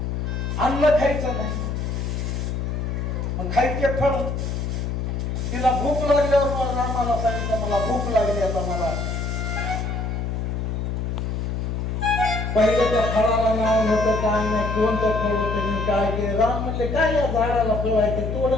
अन्न खायचं नाही, मग खायचे फळ. तिला भूक लागल्यावर रामाला सांगितलं मला भूक लागली, आता मला. पहिले त्या फळाला नाव नव्हतं, काय नाही, कोणतं फळ होतं मी काय केलं. राम म्हणले काय या झाडाला फळ आहे ते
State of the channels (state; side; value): noise; left; hum, 2 dB below the sound